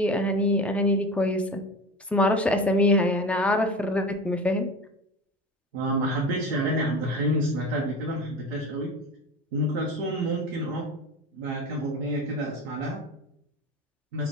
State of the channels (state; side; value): normal; both; correlation 0.30